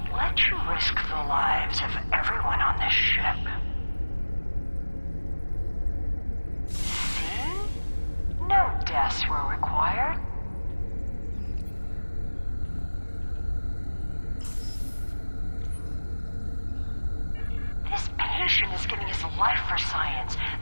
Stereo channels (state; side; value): inverted; both; correlation -1.00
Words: let you risk the lives of everyone on this ship. See? No deaths were required. patient is giving his life for science.